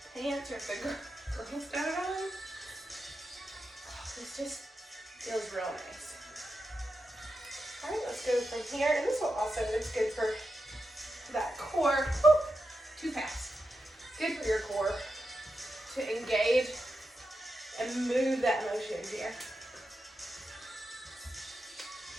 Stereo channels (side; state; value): both; normal; correlation 0.88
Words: pants or if the girls got it on. Oh, this just feels real nice. All right, let's go from here. And this will also is good for that core. Woo, too fast. Good for your core to engage and move that motion here.